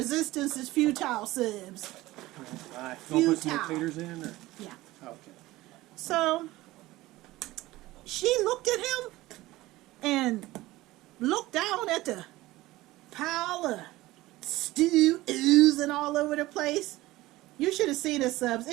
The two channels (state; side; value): quieter; left; 18.1 dB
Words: is futile, Subs. Right. You want to put some more taters in? Or? Yeah. Okay. So she looked at him and looked down at the pile of stew oozing all over the place. You should have seen it, Subs.